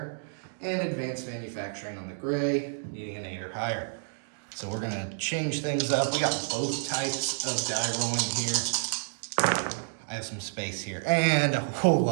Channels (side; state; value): left; silent; digital silence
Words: And advanced manufacturing on the gray, needing an 8 or higher. So we're gonna change things up. We got both types of die rolling here. I have some space here and a whole